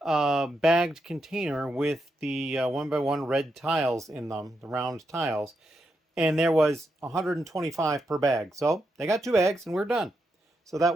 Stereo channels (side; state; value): both; normal; correlation 0.83